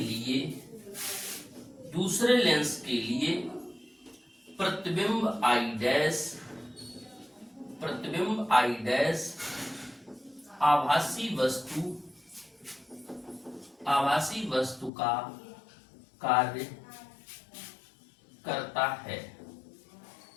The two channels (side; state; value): right; drops out; at 14.9 s